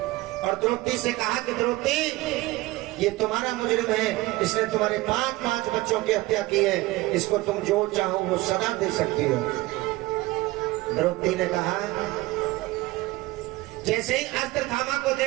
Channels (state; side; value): quieter; left; 19.8 dB